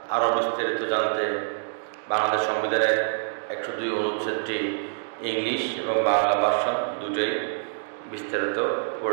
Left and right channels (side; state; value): left; silent; digital silence